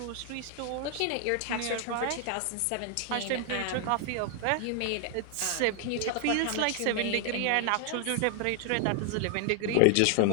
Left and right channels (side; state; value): both; different; correlation 0.00